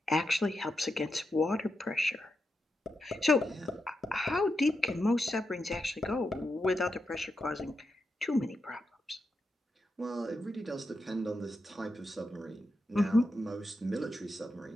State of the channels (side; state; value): both; normal; correlation 0.86